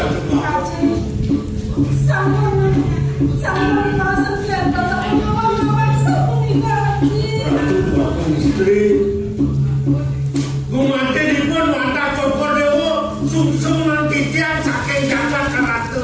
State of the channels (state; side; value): identical; both; correlation 1.00